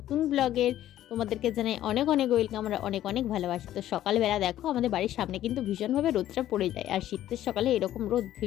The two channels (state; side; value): quieter; right; 12.7 dB